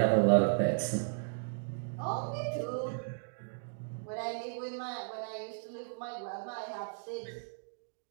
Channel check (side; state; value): left; silent; digital silence